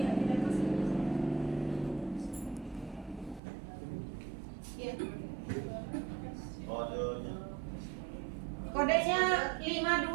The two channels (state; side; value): drops out; left; at 3.4 s